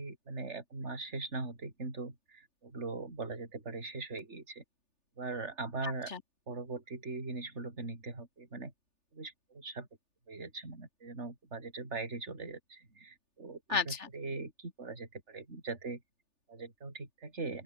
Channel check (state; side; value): late; left; 3.4 ms